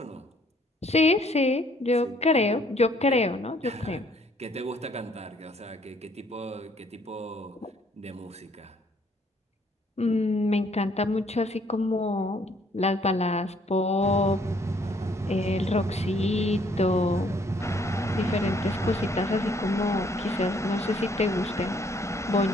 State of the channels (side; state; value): both; normal; correlation 0.64